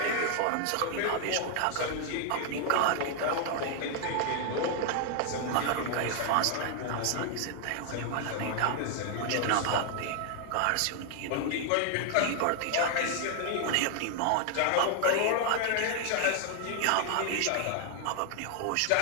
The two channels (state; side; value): different; both; correlation 0.00